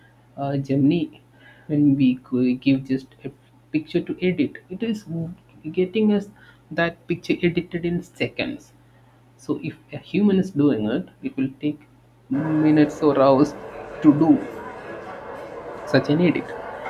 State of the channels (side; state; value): both; identical; correlation 1.00